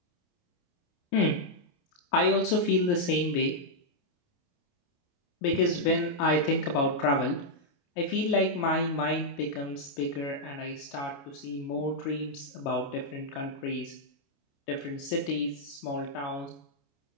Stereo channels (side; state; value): right; late; 29 ms